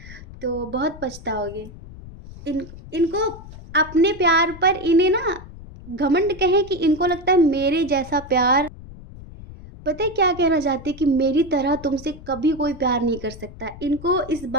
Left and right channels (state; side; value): noise; left; rumble, 16 dB below the sound